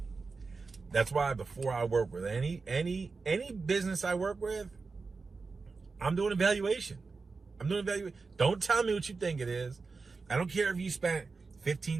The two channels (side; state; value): left; quieter; 4.3 dB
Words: That's why before I work with any business I work with, I'm doing evaluation. Don't tell me what you think it is. I don't care if you spent